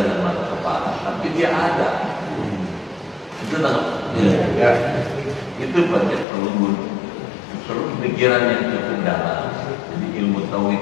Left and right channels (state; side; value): drops out; right; at 6.2 s